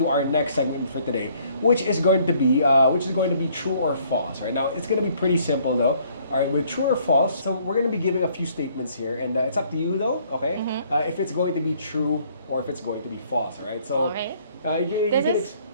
our next segment for today, which is going to be true or false. Right now, it's going to be pretty simple though. All right, with true or false. So we're going to be giving a few statements here, and it's up to you though. Okay, if it's going to be true or if it's going to be false. All right. So Okay.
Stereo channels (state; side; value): inverted; both; correlation -0.62